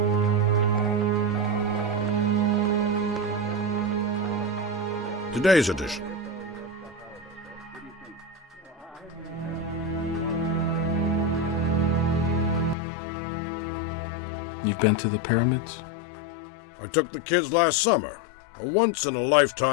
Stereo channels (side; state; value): right; drops out; at 12.8 s